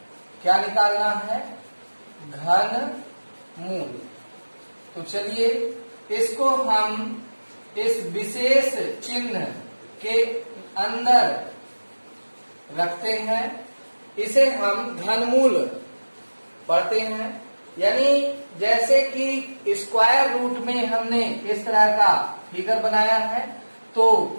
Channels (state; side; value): inverted; both; correlation -1.00